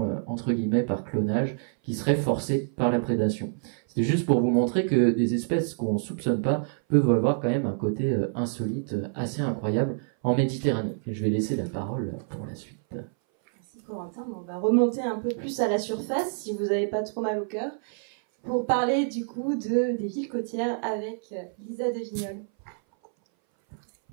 entre guillemets par clonage qui serait forcée par la prédation. C'est juste pour vous montrer que des espèces qu'on soupçonne pas peuvent avoir quand même un côté insolite, assez incroyable en Méditerranée. Et je vais laisser la parole pour la suite. Merci Corentin. On va remonter un peu plus à la surface, si vous n'avez pas trop mal au cœur, pour parler du coup des villes côtières avec Lisa de Vignolles.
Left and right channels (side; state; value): left; silent; 59 dB below the other